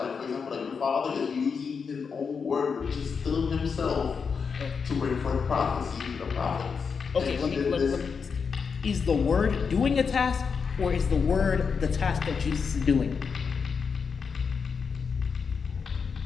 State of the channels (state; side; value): quieter; right; 5.8 dB